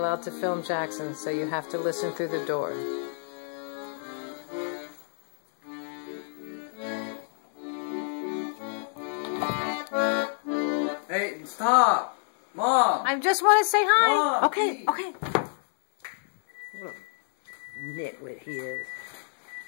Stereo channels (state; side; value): silent; right; 59 dB below the other